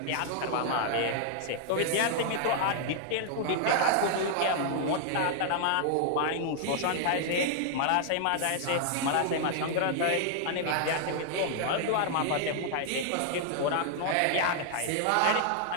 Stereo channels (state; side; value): different; both; correlation -0.01